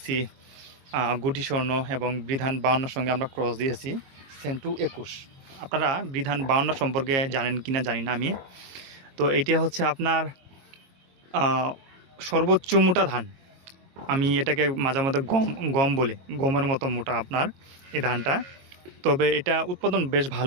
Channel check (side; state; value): left; late; 22 ms